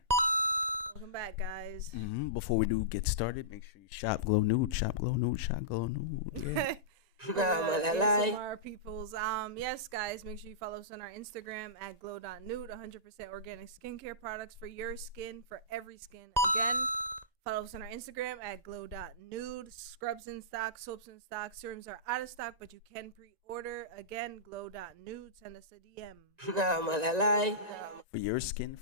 Welcome back, guys. Before we do get started, make sure you shop Glow Nude. Shop Glow Nude. Shop Glow Nude. Yeah. ASMR peoples. Yes, guys, make sure you follow us on our Instagram at glow.nude. 100% organic skincare products for your skin, for every skin. Again, follow us on our Instagram at glow.nude. Scrubs in stock, soaps in stock, serums are out of stock, but you can pre-order. Again, glow.nude. Send us a DM. For your skin,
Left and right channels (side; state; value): left; late; 1.9 ms